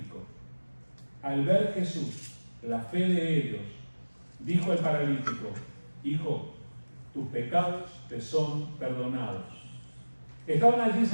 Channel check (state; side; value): inverted; both; correlation -1.00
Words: Al ver Jesús la fe de ellos, dijo el paralítico: Hijo, tus pecados te son perdonados. Estaban allí